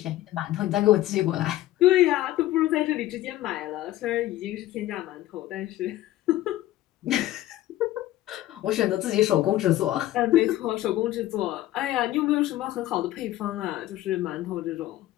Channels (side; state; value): right; quieter; 15.0 dB